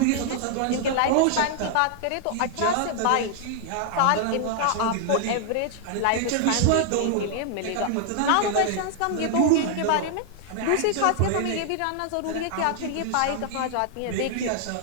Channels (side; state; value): both; different; correlation 0.00